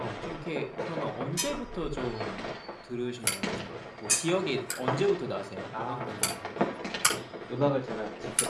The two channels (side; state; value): both; identical; correlation 1.00